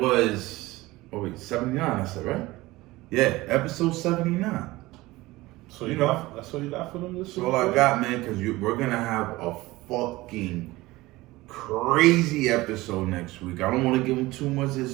79. I said, right? Yeah, episode 79. So you know, that's all you got for them this week? That's all I got, man, because we're going to have a fucking crazy episode next week. I don't want to give them too much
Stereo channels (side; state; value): left; quieter; 19.5 dB